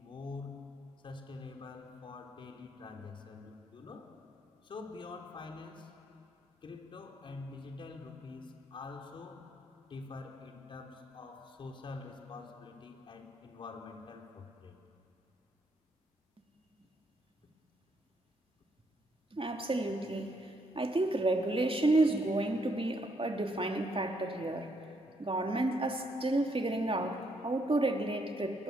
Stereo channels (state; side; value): normal; both; correlation 0.73